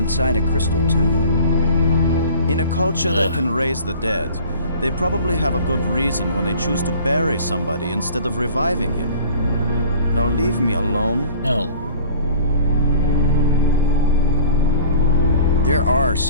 a crystal tomb. In a culture Ugh. that can raise the dead, they probably have a good reason when they choose to bury somebody instead of reviving him. Now leave me alone. No. There are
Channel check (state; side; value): inverted; both; correlation -0.46